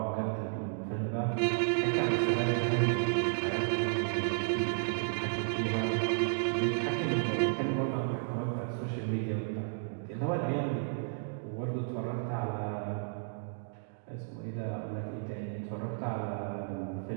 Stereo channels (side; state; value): left; silent; digital silence